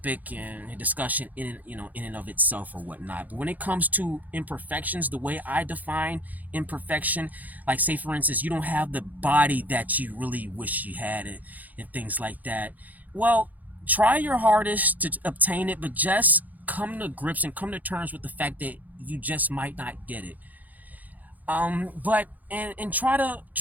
and a discussion in and of itself or whatnot. But when it comes to imperfections, the way I define imperfection, like say for instance, you don't have the body that you really wish you had, and things like that. Well, try your hardest to obtain it, but just come to grips and come to terms with the fact that you just might not get it. But try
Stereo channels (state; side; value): late; left; 0.081 ms